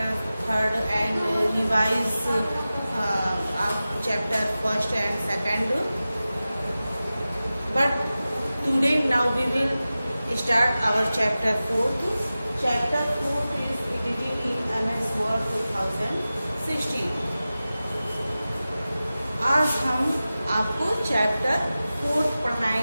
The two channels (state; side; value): inverted; both; correlation -0.95